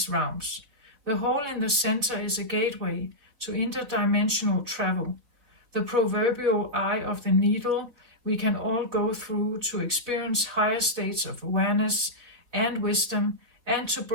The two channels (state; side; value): late; left; 4.1 ms